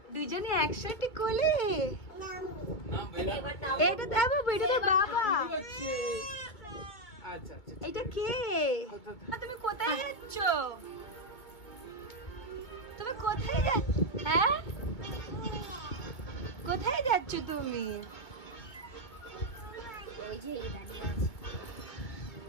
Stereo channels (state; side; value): late; right; 2.4 ms